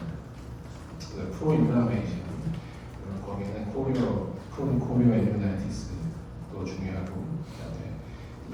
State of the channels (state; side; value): identical; both; correlation 1.00